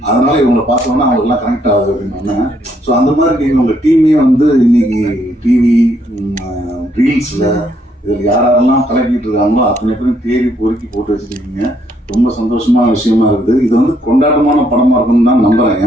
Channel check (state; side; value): normal; both; correlation 0.71